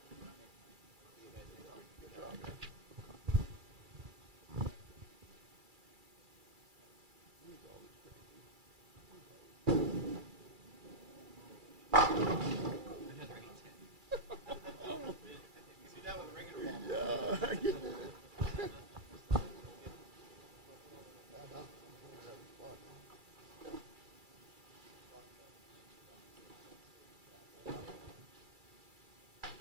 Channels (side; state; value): left; late; 2.3 ms